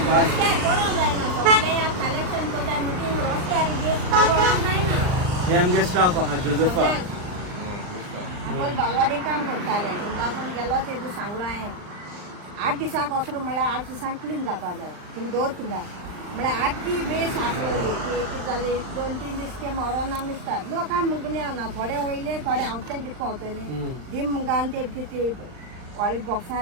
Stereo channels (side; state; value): left; late; 39 ms